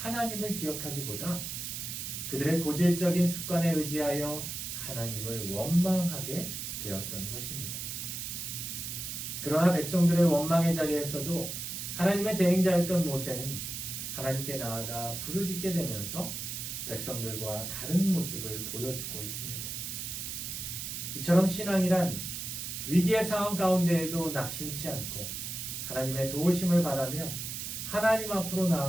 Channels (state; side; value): noise; right; hiss, 5 dB below the sound